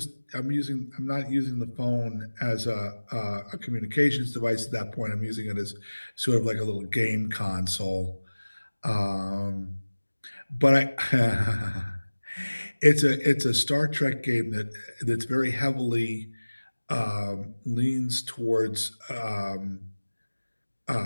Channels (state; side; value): inverted; both; correlation -1.00